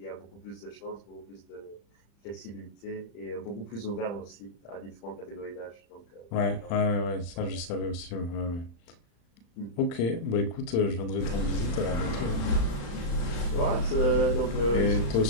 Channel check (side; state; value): right; late; 35 ms